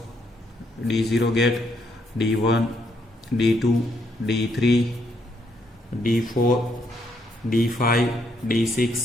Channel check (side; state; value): both; normal; correlation 0.74